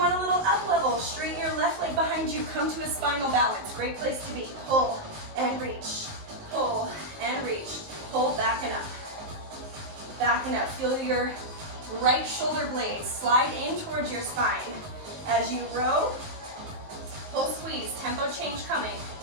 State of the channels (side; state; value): left; late; 19 ms